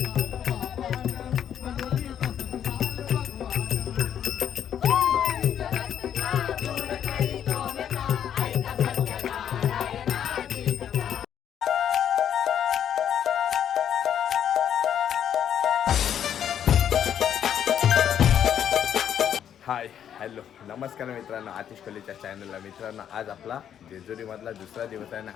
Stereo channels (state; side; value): quieter; right; 9.4 dB